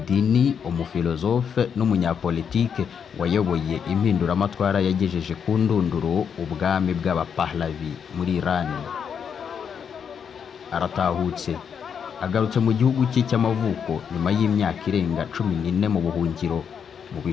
umufilozofe n'umunyapolitike wayoboye impinduramatwara yagejeje ku ndunduro ubwami bw'abapahlavi muri Iran. Aratahutse agarutse mu gihugu cye cy'amavuko nyuma y'imyaka irenga 14 mu buhungiro mu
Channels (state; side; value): quieter; right; 7.3 dB